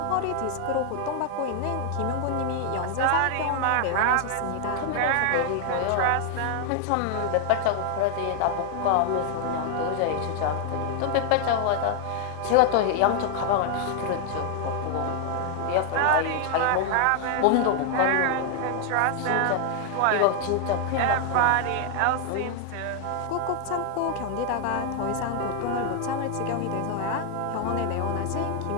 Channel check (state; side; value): different; both; correlation 0.00